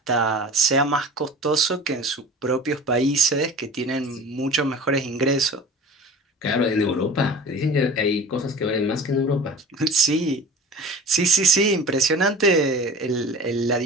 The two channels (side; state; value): both; normal; correlation 0.39